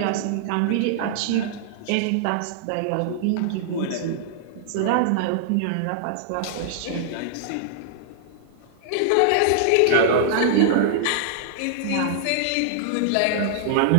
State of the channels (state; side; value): different; both; correlation -0.01